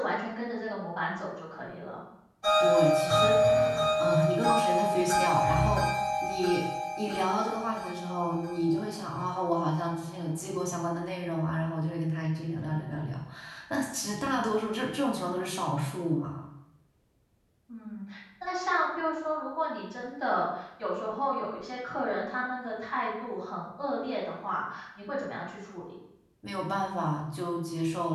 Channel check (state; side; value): identical; both; correlation 1.00